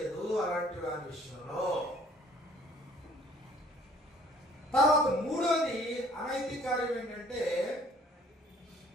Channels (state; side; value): normal; both; correlation 0.57